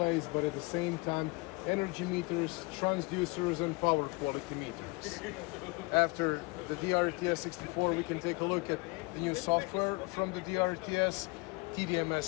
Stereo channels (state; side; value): quieter; right; 26.5 dB